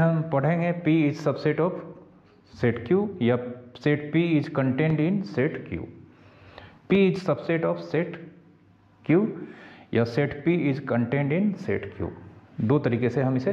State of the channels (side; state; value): both; identical; correlation 1.00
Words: पढ़ेंगे P is subset of set Q या set P is contained in set Q। P is subset of set Q या set P is contained in set Q, दो तरीके से हम इसे